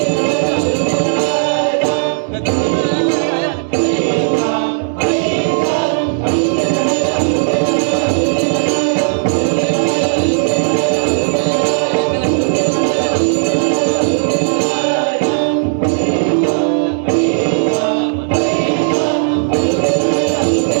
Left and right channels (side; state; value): left; silent; digital silence